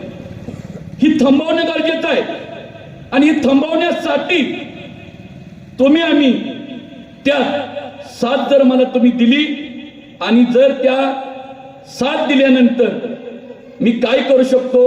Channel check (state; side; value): identical; both; correlation 1.00